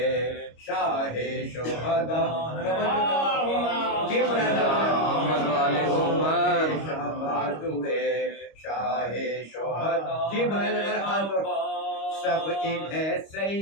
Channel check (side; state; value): right; late; 25 ms